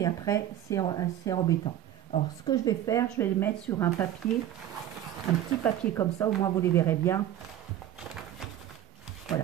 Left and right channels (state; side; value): quieter; left; 11.9 dB